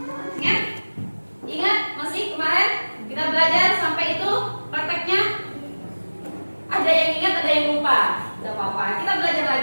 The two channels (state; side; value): inverted; both; correlation -1.00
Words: Ingat masih kemarin kita belajar sampai itu prakteknya. Ada yang ingat, ada yang lupa. Tidak apa-apa, kita belajar